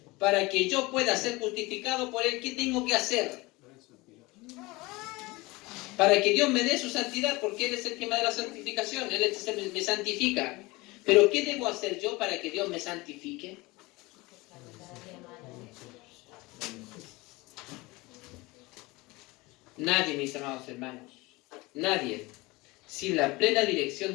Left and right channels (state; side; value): quieter; right; 22.6 dB